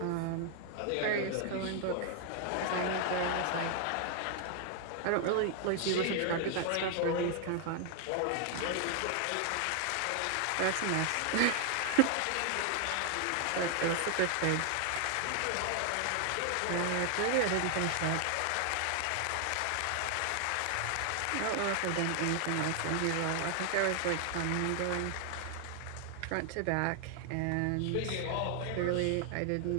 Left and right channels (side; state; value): both; different; correlation 0.00